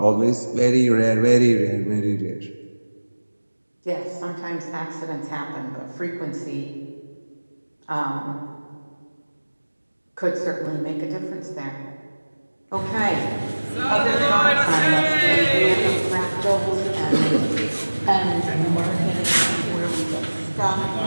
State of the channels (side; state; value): both; inverted; correlation -1.00